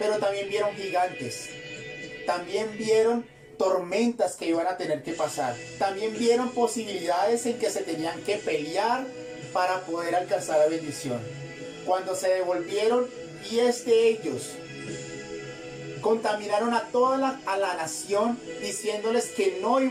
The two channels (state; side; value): identical; both; correlation 1.00